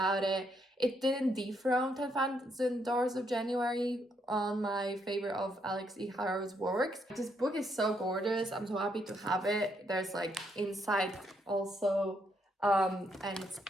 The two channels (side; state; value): both; normal; correlation 0.75